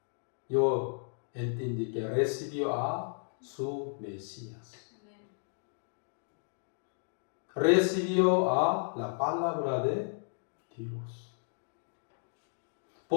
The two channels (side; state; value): right; silent; digital silence